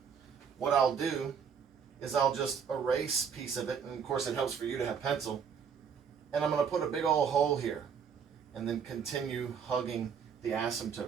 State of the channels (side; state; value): left; quieter; 7.0 dB